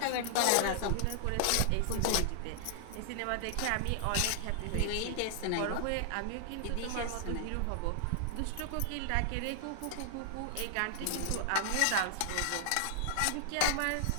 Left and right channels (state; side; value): different; both; correlation 0.00